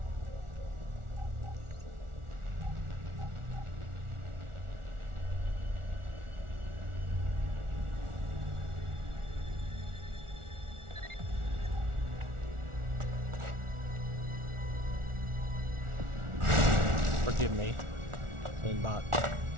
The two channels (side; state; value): left; late; 1.4 ms